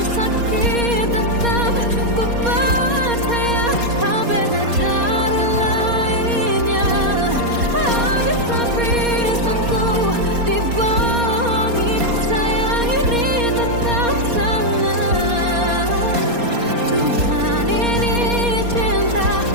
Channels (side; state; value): left; late; 4.2 ms